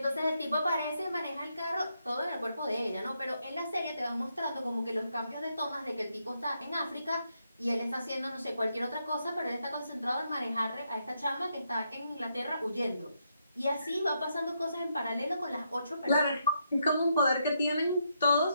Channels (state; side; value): inverted; both; correlation -0.79